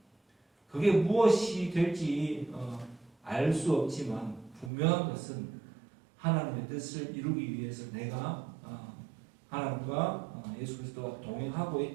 그게 무엇이 될지 알 수 없지만 분명한 것은 하나님의 뜻을 이루기 위해서 내가 하나님과 예수 그리스도와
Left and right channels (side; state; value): left; drops out; at 4.7 s